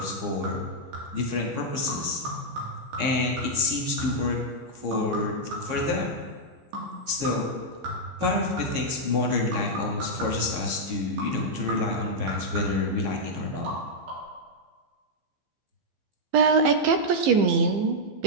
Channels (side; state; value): left; late; 15 ms